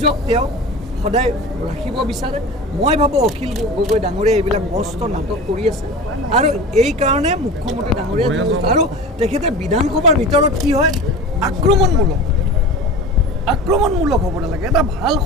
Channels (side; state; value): both; normal; correlation 0.34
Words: তেওঁ সদায় ৰাখিব বিচাৰে। মই ভাবোঁ অখিল গগৈ ডাঙৰীয়াই এইবিলাক মস্ত নাটক কৰি আছে আৰু এই কাৰণে মুখ্যমন্ত্ৰী ডাঙৰীয়াই আৰু তেখেতে বিধানসভাৰ ভিতৰত কি হয় আক্ৰমণমূলক হ'ব নালাগে। এটা ভাল